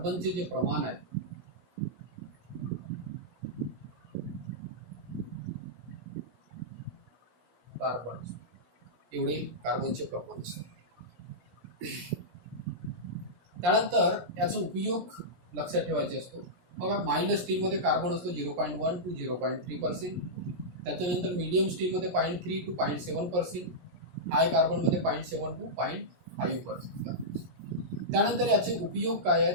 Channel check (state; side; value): late; left; 17 ms